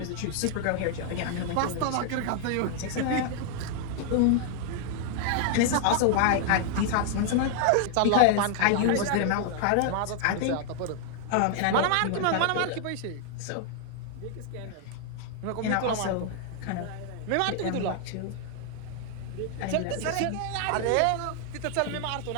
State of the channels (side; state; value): both; different; correlation 0.00